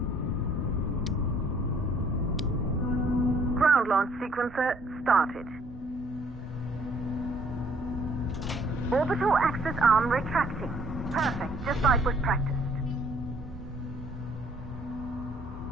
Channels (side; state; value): both; normal; correlation 0.61